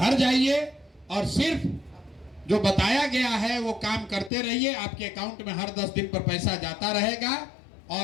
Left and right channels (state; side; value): drops out; right; at 4.3 s